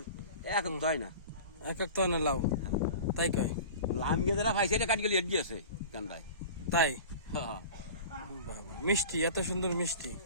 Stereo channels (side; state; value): both; inverted; correlation -0.37